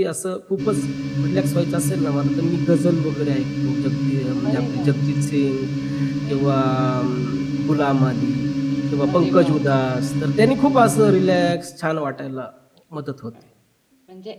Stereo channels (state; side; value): identical; both; correlation 1.00